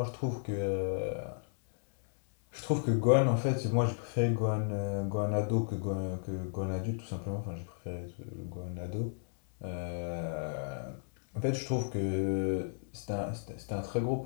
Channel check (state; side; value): silent; right; 55 dB below the other